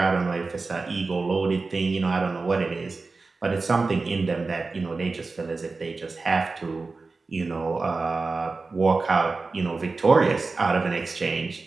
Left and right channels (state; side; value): quieter; left; 3.9 dB